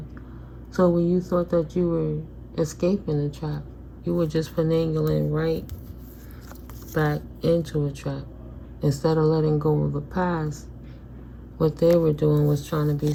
So when you thought that you were escaping the trap, you were just finagling right back into a trap. Instead of letting go of the past, what they were doing was trying to be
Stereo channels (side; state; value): both; identical; correlation 1.00